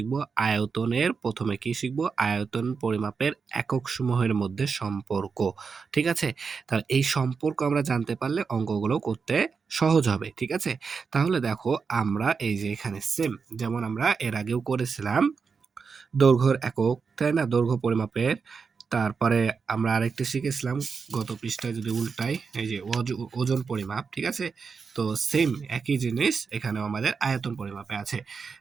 আয়তনের, প্রথমে কি শিখব? আয়তন পরিমাপের একক সমূহের মধ্যে সম্পর্ক, ঠিক আছে? তাহলে এই সম্পর্ক আমরা জানতে পারলে অঙ্কগুলো করতে সহজ হবে, ঠিক আছে? তাহলে দেখো, আমরা এই যে এখানে সেম যেমন আমরা এর আগেও করেছিলাম দৈর্ঘ্যের একক, তাই না? দৈর্ঘ্য পরিমাপের। তারপরে আমরা আরেকটি শিখেছিলাম গত পৃষ্ঠায়, যদি উল্টাই, এই যে ওজন পরিমাপ, ঠিক আছে? তো সেম একই জিনিস এখানেও আমাদের আয়তন পরিমাপে আছে,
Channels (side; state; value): left; quieter; 5.4 dB